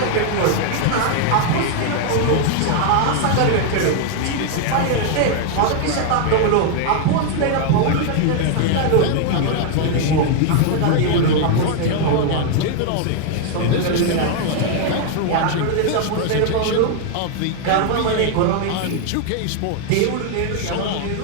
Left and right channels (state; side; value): different; both; correlation 0.00